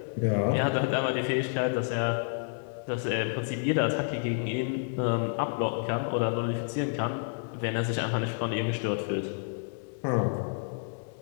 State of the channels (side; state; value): right; silent; digital silence